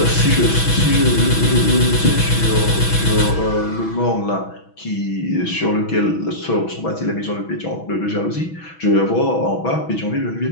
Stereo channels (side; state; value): right; late; 6.1 ms